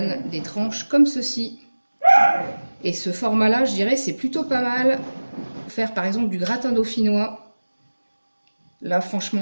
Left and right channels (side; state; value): both; inverted; correlation -1.00